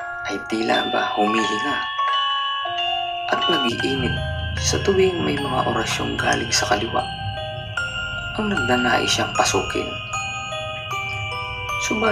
ay tila ba humihinga at nag-iinit sa tuwing may mga orasyong galing sa kaliwa ang nagnanais siyang pasukin.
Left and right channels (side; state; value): both; identical; correlation 1.00